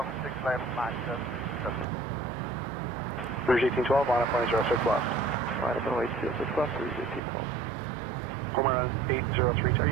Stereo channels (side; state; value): left; drops out; at 7.2 s